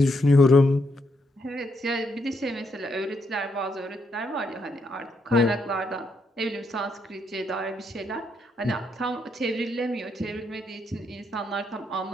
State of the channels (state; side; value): normal; both; correlation 0.77